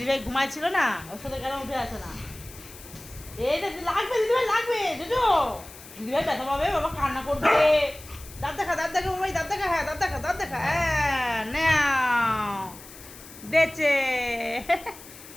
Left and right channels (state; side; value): noise; left; hiss, 18 dB below the sound